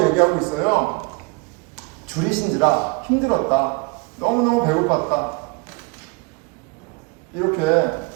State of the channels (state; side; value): quieter; left; 29.4 dB